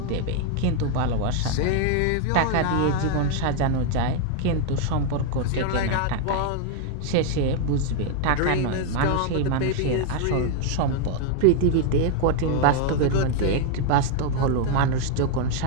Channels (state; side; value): different; both; correlation 0.00